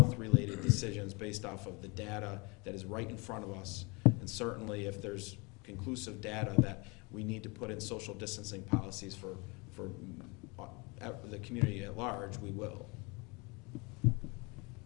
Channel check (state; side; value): quieter; right; 28.3 dB